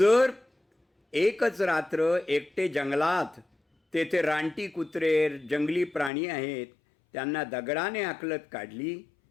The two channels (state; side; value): drops out; right; at 6.1 s